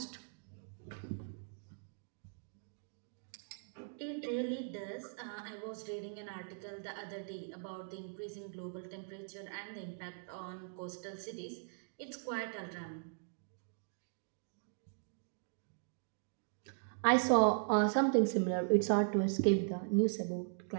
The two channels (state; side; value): silent; left; digital silence